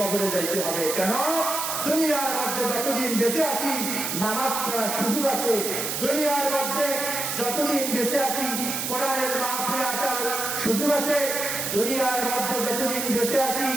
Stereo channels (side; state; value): right; noise; hiss, 2 dB below the sound